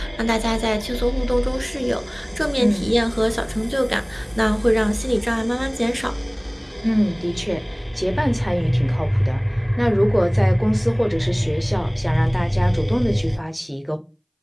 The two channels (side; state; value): both; identical; correlation 1.00